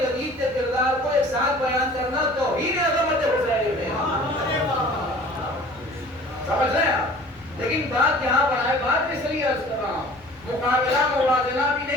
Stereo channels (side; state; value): left; noise; rumble, 27 dB below the sound